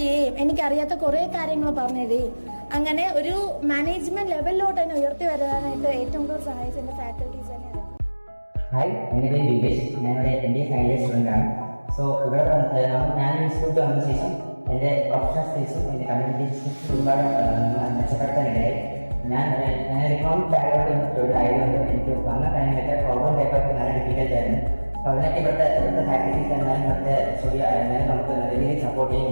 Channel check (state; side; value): inverted; both; correlation -1.00